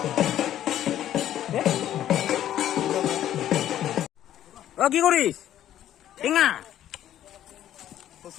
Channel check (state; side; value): quieter; right; 11.7 dB